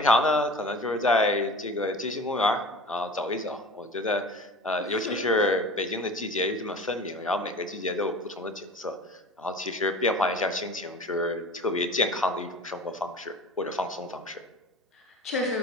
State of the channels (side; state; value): both; normal; correlation 0.38